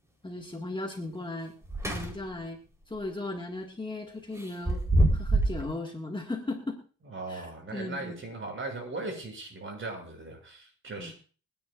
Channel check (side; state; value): both; normal; correlation 0.73